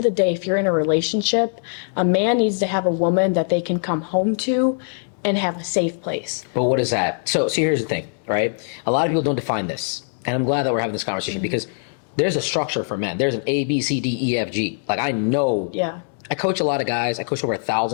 the day, if you're in a relationship, a man needs to have a woman that they can come home to and have a safe place. But what is that? So here's the thing, right? A lot of people don't define this. And I'm glad that we're having this conversation because there's a structure for men. There's an A, B, C, D, E, F, G. Like, I know. Yeah. I coach a lot of guys. I coach over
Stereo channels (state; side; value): silent; right; 64 dB below the other